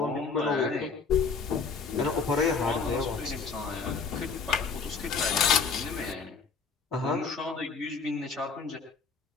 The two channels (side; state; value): right; quieter; 5.1 dB